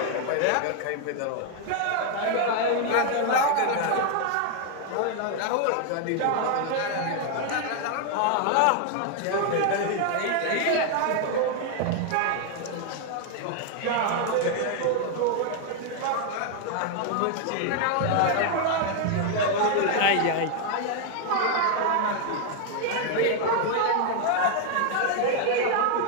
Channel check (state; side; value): different; both; correlation 0.00